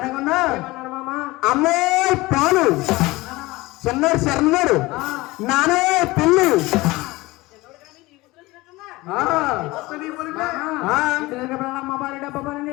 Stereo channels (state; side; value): quieter; right; 20.7 dB